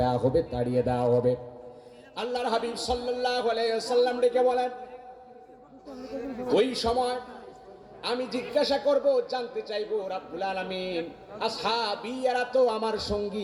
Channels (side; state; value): both; identical; correlation 1.00